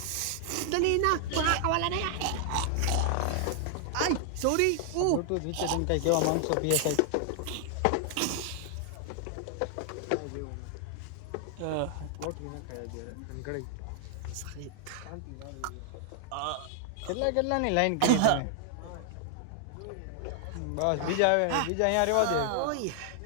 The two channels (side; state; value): both; different; correlation 0.00